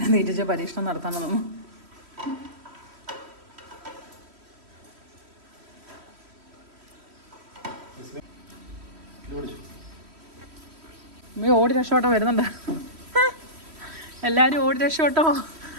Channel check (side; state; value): left; late; 3.1 ms